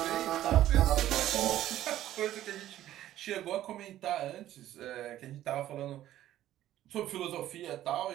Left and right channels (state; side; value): quieter; left; 13.1 dB